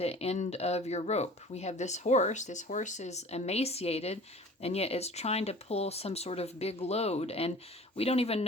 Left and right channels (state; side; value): normal; both; correlation 0.44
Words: end of your rope. We have this horse. This horse is emaciated, and yet it's trying to pull some sort of big load, and we don't even